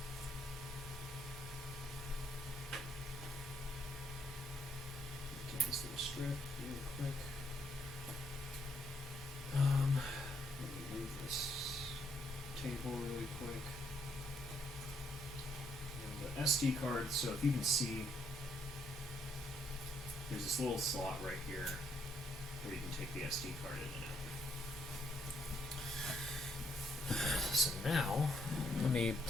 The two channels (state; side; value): normal; both; correlation 0.73